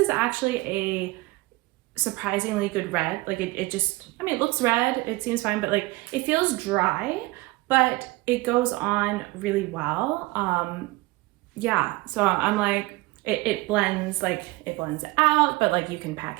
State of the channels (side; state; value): left; quieter; 21.7 dB